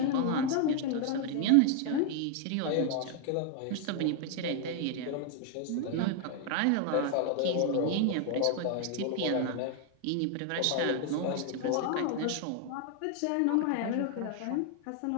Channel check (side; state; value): both; different; correlation 0.00